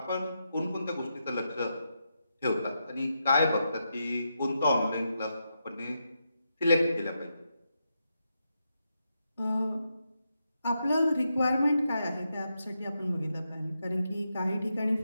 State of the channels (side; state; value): both; inverted; correlation -0.84